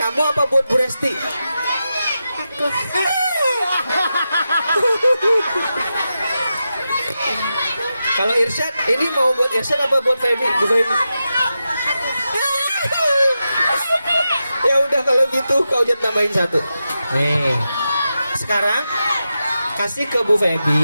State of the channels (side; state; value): both; inverted; correlation -0.89